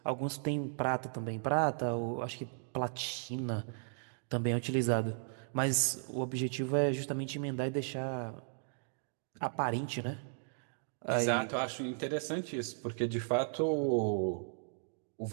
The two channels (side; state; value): left; silent; digital silence